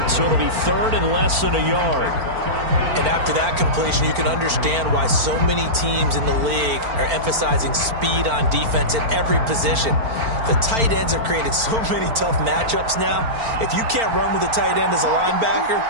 so it'll be 3rd and less than a yard. And after that completion, you can understand why so many teams in the league are emphasizing speed on defense at every position. The tight ends have created so many tough matchups now. If you can't run with a tight end as a linebacker,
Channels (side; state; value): left; late; 4.4 ms